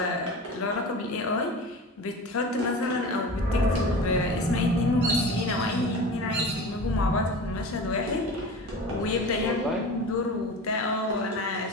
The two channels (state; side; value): normal; both; correlation 0.33